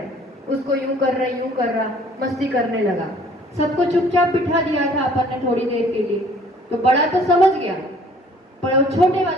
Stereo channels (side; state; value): both; normal; correlation 0.56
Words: हैं, उसको यूं कर रहे, यूं कर रहा, मस्ती करने लगा। सबको चुपचाप बिठा दिया था अपन ने थोड़ी देर के लिए, तो बड़ा तो समझ गया, पर वो छोटे